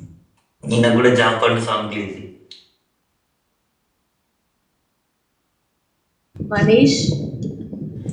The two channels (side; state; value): both; identical; correlation 1.00